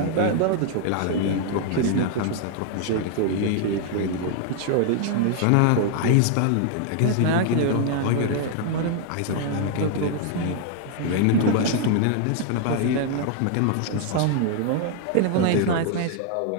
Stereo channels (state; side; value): different; both; correlation 0.00